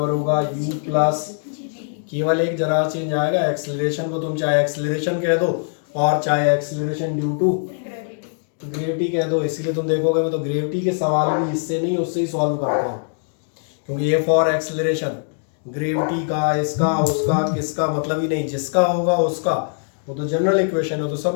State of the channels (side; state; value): right; silent; digital silence